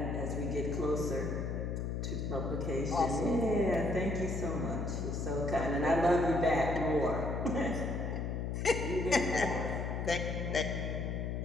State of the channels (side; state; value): left; noise; hum, 2 dB below the sound